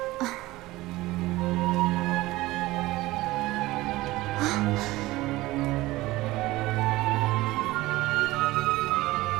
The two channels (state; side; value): quieter; left; 18.7 dB